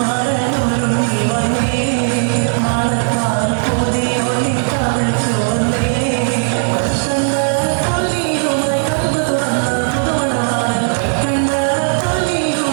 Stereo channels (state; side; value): silent; left; digital silence